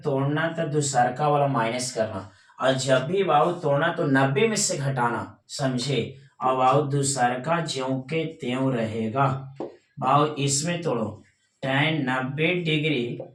तोड़ना तो दूसरका वाला माइनस करना, और जब भी बाबू तोड़ना तो 90 में से घटाना, समझे। और बाबू दूसरका ज्यों के त्यों रहेगा। बाबू इसमें तोड़ो tan 90 डिग्री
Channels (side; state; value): both; identical; correlation 1.00